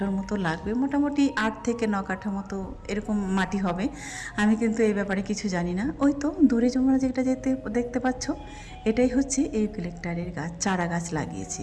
মতো লাগবে, মোটামুটি 8 থেকে 9 কাঠা মতো এরকম মাটি হবে। আমি কিন্তু এই ব্যাপারে কিছু জানি না। ওই তো দূরে তোমরা যেটা দেখতে পাচ্ছ, এটাই হচ্ছে ইউক্যালিপটাসের গাছ, চারা গাছ লাগিয়েছি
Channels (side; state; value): both; identical; correlation 1.00